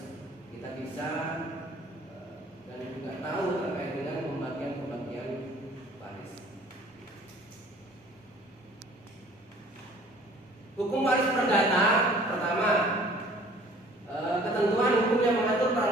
kita bisa dan juga tahu terkait dengan pembagian waris. Hukum waris perdata pertama, ketentuan hukum yang mengatur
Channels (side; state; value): both; normal; correlation 0.52